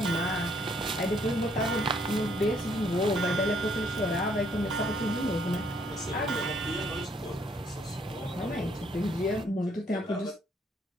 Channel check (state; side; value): normal; both; correlation 0.67